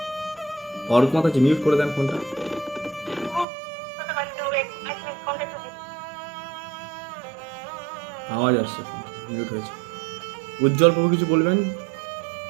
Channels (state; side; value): drops out; left; at 3.5 s